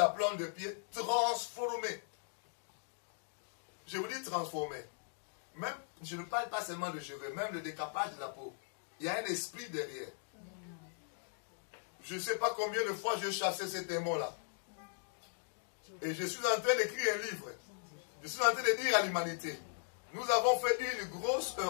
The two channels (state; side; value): silent; right; digital silence